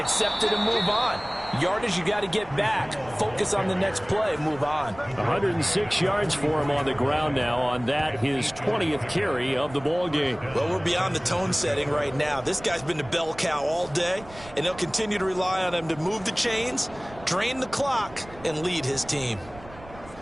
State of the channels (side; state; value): right; noise; rumble, 19 dB below the sound